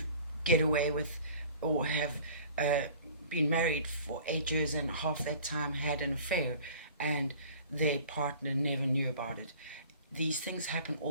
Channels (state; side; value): inverted; both; correlation -0.47